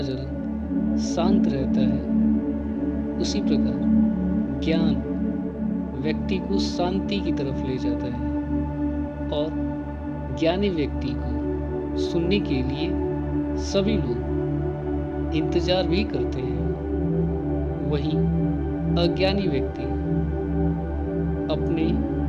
जल शांत रहता है, उसी प्रकार ज्ञान व्यक्ति को शांति की तरफ ले जाता है और ज्ञानी व्यक्ति को सुनने के लिए सभी लोग इंतजार भी करते हैं। वहीं अज्ञानी व्यक्ति अपने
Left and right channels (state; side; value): identical; both; correlation 1.00